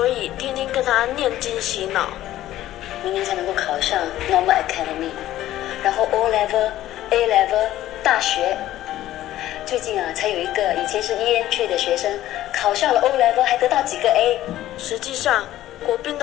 以天天跟他念经洗脑。明年才能够考上 Normal Academy， 然后 O Level、A Level 大学。最近啊，才有一个以前是 EM3 的学生考上了 O Level， 还得到几个 A。实际上，国斌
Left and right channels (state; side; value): quieter; right; 14.0 dB